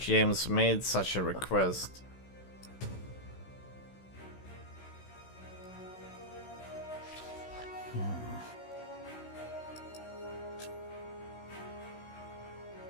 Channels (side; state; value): right; late; 16 ms